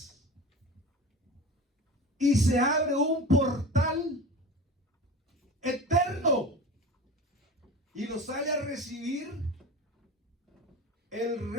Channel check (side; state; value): both; normal; correlation 0.33